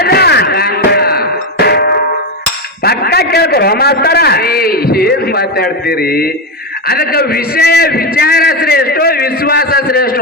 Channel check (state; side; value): normal; both; correlation 0.11